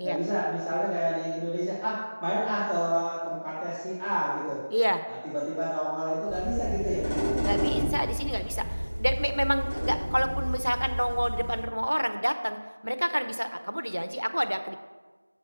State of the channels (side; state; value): both; inverted; correlation -1.00